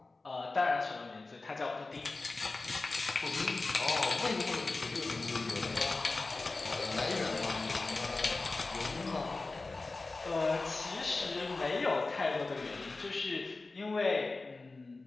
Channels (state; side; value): quieter; right; 3.5 dB